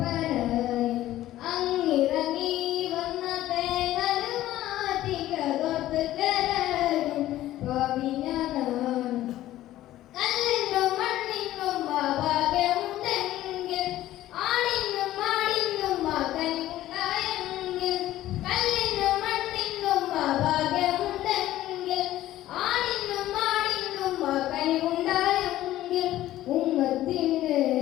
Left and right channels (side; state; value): right; quieter; 14.4 dB